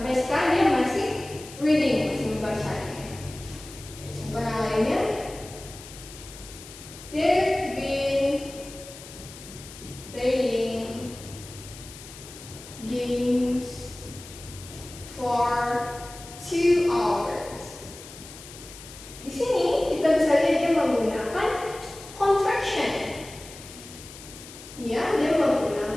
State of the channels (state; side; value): noise; left; hiss, 16 dB below the sound